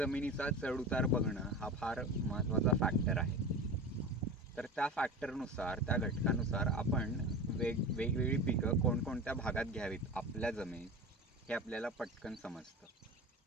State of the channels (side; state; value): both; normal; correlation 0.30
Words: चढउतार बघणं हा फार महत्त्वाचा फॅक्टर आहे. तर त्या फॅक्टरनुसार, त्या घटकानुसार आपण वेगवेगळी पिकं कोणकोणत्या भागात घ्यावीत आपल्या जमिनीत हे आपल्याला पटकन समजतं.